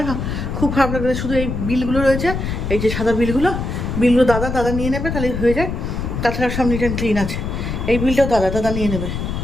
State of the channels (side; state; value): left; noise; rumble, 4 dB below the sound